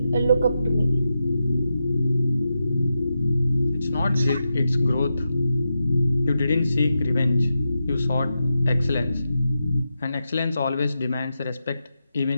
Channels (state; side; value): inverted; both; correlation -0.88